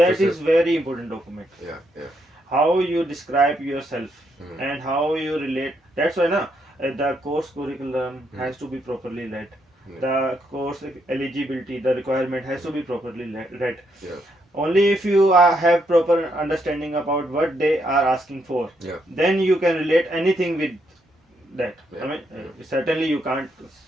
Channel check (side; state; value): both; normal; correlation 0.77